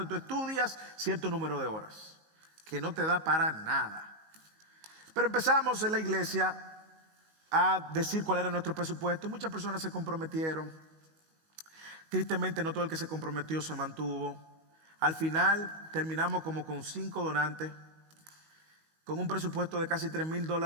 tú estudias cierto número de horas, que no te da para nada. Pero empezamos en la iglesia a decir cuál era nuestro presupuesto. Muchas personas se comprometieron. Tristemente no todo el que se comprometió se mantuvo. Al final terminamos como con 5 donantes, con un presupuesto de casi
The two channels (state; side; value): late; left; 19 ms